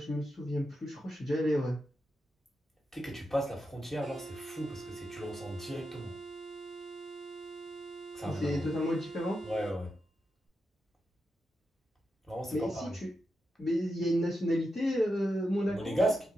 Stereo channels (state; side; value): normal; both; correlation 0.87